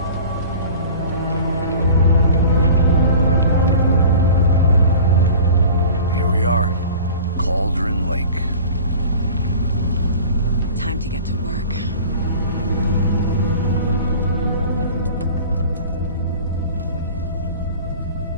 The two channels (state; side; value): inverted; both; correlation -0.42